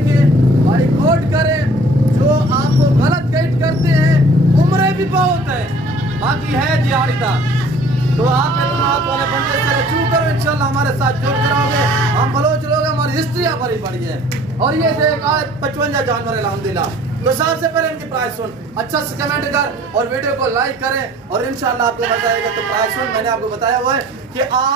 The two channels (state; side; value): normal; both; correlation 0.52